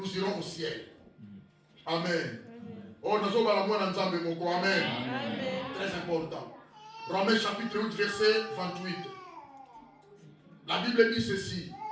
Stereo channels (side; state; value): both; identical; correlation 1.00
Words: irons au ciel. Amen. Oh, nous sommes à la moindre ensemble, mon corps. Amen. Très important. Romains chapitre 8, verset 28. La Bible dit ceci.